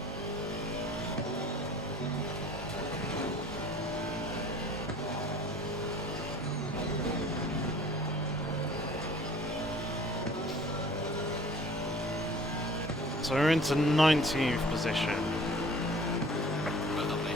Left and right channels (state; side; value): normal; both; correlation 0.49